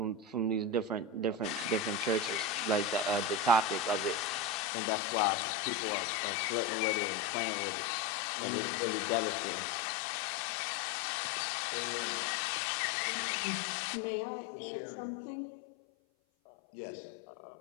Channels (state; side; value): drops out; right; at 4.7 s